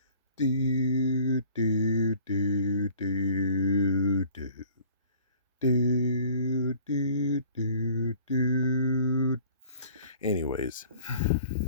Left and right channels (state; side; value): inverted; both; correlation -0.52